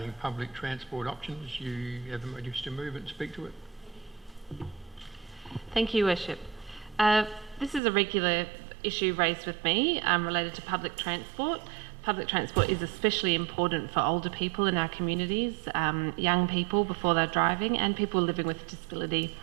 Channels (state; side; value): drops out; left; at 7.8 s